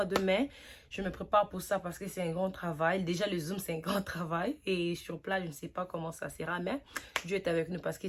de mai. Je me prépare pour ça parce que c'est un grand travail. Déjà, le Zoom, c'est un grand travail. Et sur place, je ne sais pas comment ça sera, mais Dieu est avec nous parce que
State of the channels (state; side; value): identical; both; correlation 1.00